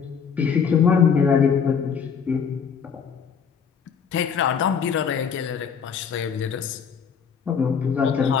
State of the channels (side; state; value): right; quieter; 6.7 dB